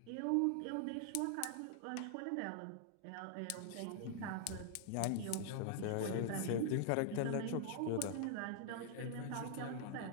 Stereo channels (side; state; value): both; different; correlation 0.00